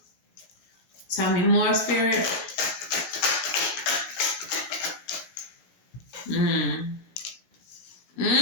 Tell me more, Spirit.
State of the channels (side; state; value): right; late; 17 ms